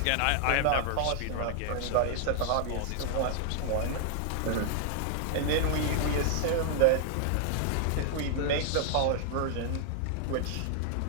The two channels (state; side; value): different; both; correlation 0.00